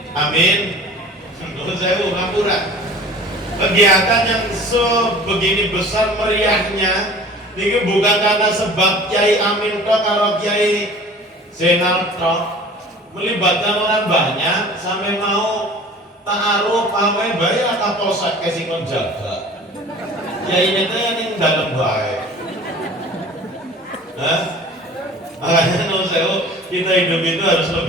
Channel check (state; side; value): normal; both; correlation 0.44